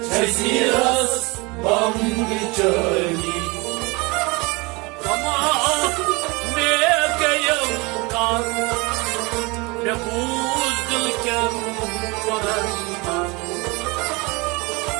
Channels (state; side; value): quieter; left; 26.1 dB